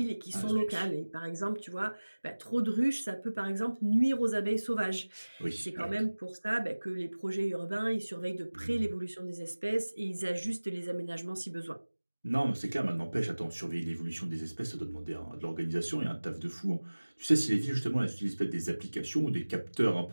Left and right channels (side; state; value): both; inverted; correlation -1.00